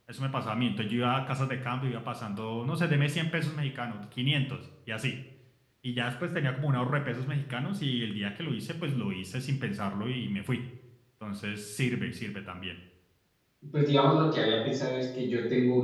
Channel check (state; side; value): identical; both; correlation 1.00